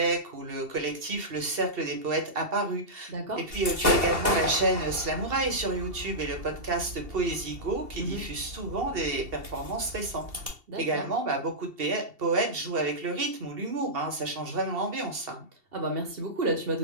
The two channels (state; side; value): late; left; 2.7 ms